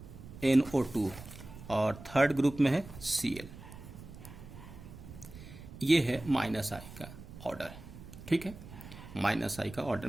NO2 और थर्ड ग्रुप में है Cl। ये है माइनस आई का ऑर्डर। ठीक है, माइनस आई का ऑर्डर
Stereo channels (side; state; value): right; noise; rumble, 15 dB below the sound